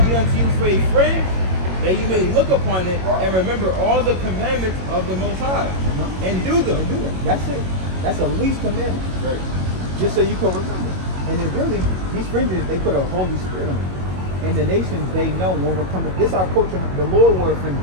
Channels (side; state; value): left; late; 22 ms